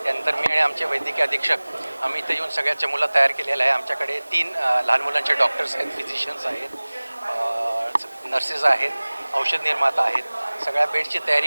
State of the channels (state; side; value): inverted; both; correlation -1.00